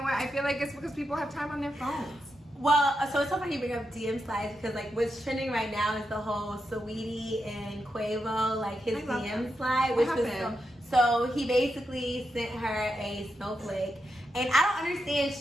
what? I feel like it's because people have time on their phones. Well, so it's so funny you bring up DM slides because like what's trending right now is the whole Saweetie and Quavo, like his I love DM that. slide, What which was happened? so he basically sent her a snowflake, and I don't understand.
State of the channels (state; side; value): normal; both; correlation 0.86